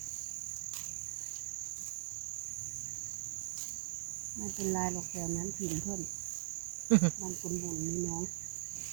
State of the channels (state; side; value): silent; left; digital silence